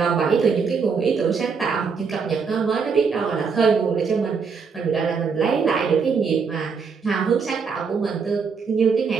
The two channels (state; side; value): quieter; left; 5.5 dB